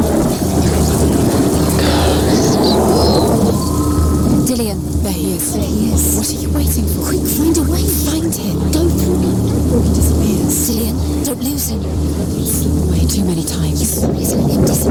Dillion. There he is. There he is. What are you waiting for? Quick, find a way. Find him. Go. Before he disappears. Dillion, don't lose him. Slip away too many times. Please let him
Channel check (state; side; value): identical; both; correlation 1.00